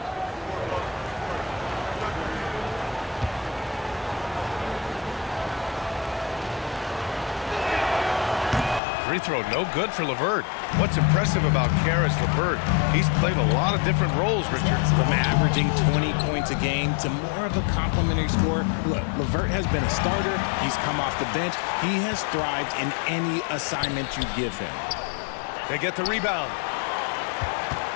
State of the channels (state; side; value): drops out; right; at 8.8 s